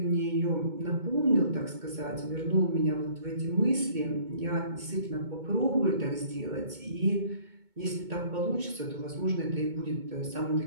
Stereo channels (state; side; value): late; left; 2.2 ms